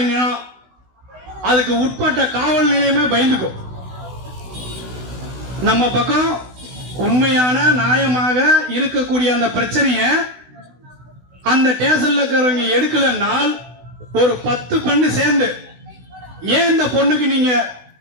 அதுக்கு உட்பட்ட காவல் நிலையமே பயந்துக்கும். நம்ம பக்கம் உண்மையான நியாயமாக இருக்கக்கூடிய அந்த பிரச்சனைய அந்த ஸ்டேஷன்ல இருக்கிறவங்க எடுக்கலனால் ஒரு 10 பெண்ணு சேர்ந்து, ஏன் இந்த பொண்ணுக்கு நீங்க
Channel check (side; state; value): left; late; 16 ms